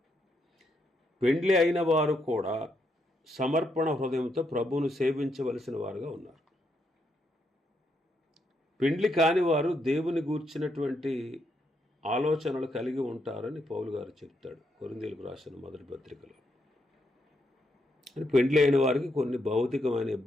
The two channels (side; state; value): both; normal; correlation 0.78